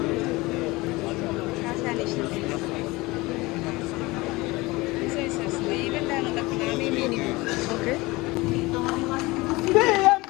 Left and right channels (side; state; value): right; quieter; 22.0 dB